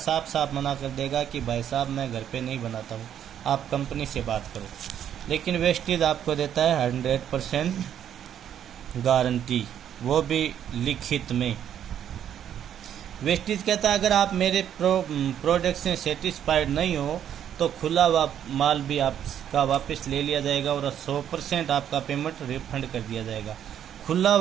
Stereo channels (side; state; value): left; quieter; 9.8 dB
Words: साफ मना कर देगा कि भाई साहब मैं घर पे नहीं बनाता हूँ, आप कंपनी से बात करो। लेकिन वेस्टेज आपको देता है 100% गारंटी, वो भी लिखित में। वेस्टेज कहता है अगर आप मेरे प्रोडक्ट से सेटिस्फाइड नहीं हो तो खुला माल भी आपका वापस ले लिया जाएगा और 100% आपका पेमेंट रिफंड कर दिया जाएगा। खुला